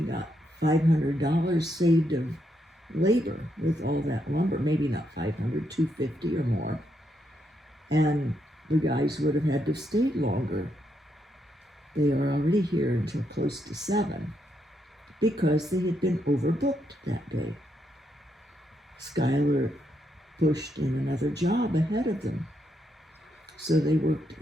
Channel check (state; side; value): normal; both; correlation 0.79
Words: got $500 saved of labor with all that lumber. Maybe not 500, 250 or more. And the guys would have had to stay longer. They are already here until close to 7 because they had been overbooked that day. Skylar pushed in another job ahead of them. So they worked